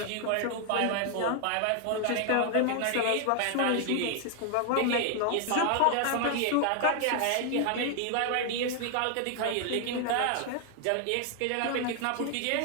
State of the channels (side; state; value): both; different; correlation 0.00